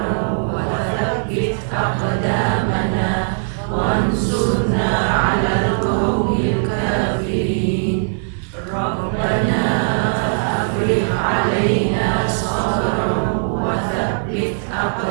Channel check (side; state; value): left; silent; digital silence